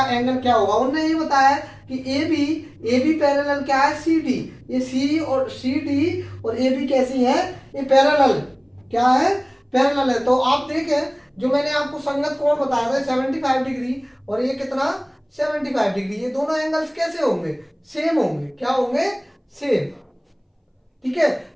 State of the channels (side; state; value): both; identical; correlation 1.00